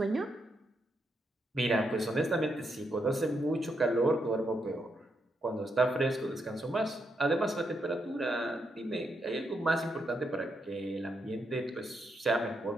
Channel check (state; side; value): normal; both; correlation 0.80